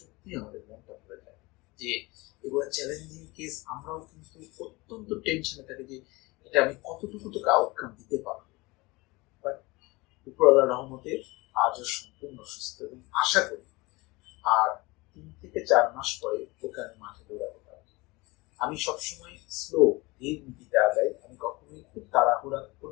আমাদের মনটা ভরে যায় যে এগুলো চ্যালেঞ্জিং কেস। আমরাও কিন্তু অত্যন্ত টেনশনে থাকি যে এটা আমি কতটুকু তোকে আউটকাম দিতে পারবো। বাট উপরওয়ালার রহমতে আজও সম্পূর্ণ সুস্থ এবং আশা করি আর 3 থেকে 4 মাস পরে ওকে আমি মাঠে দৌড়াতে পারবো। আমি সবসময় স্লো, ধীর নীতিতে আগাই। আমি কখনোই খুব তাড়াহুড়া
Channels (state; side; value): quieter; right; 23.4 dB